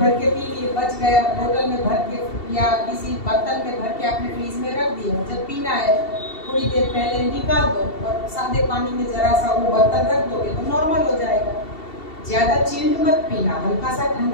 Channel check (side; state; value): right; late; 2.7 ms